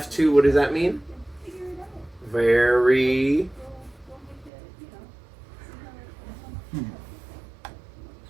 what does that mean? Very.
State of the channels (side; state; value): left; drops out; at 4.5 s